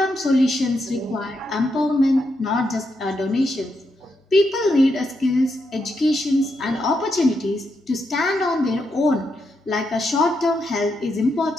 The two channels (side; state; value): both; normal; correlation 0.82